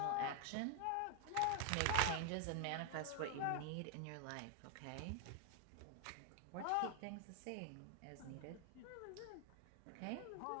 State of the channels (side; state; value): both; different; correlation 0.00